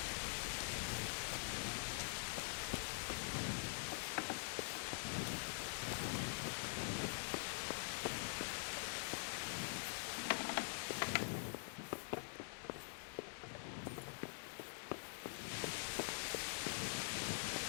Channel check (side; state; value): right; silent; digital silence